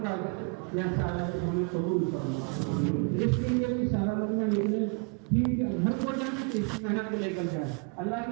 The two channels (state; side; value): quieter; left; 35.3 dB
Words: کا یا سارا ہمیں قبول کرنا۔ جس کے لیے بھی سارا مطلب نکلے ٹھیک ہے، گھر کو جائیں تو اسی محنت لے کر جائے، اللہ